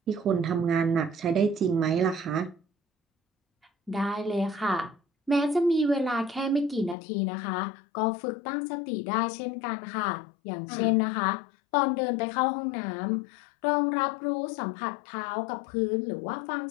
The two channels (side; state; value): right; drops out; at 7.0 s